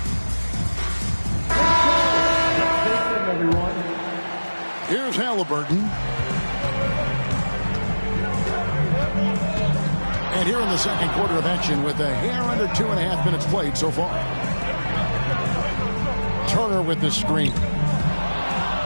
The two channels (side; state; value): both; inverted; correlation -1.00